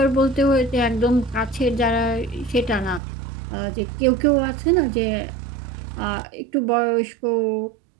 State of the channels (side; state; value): left; drops out; at 3.0 s